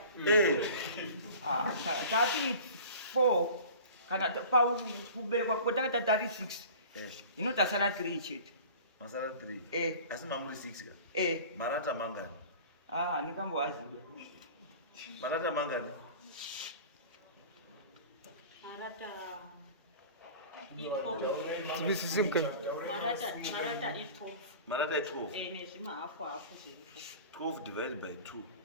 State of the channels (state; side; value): inverted; both; correlation -0.41